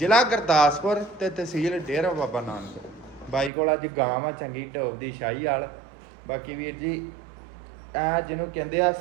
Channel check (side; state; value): left; drops out; at 3.5 s